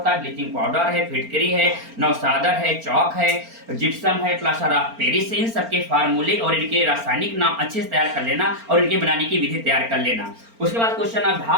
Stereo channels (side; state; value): left; late; 4.4 ms